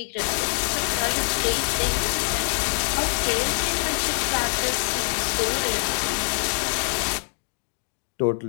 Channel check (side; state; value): right; silent; digital silence